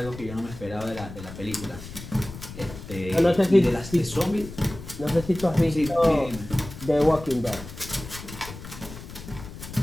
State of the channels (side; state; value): left; noise; rumble, 13 dB below the sound